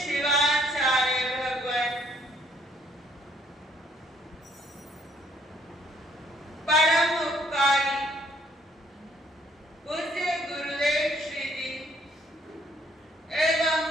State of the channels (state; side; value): normal; both; correlation 0.65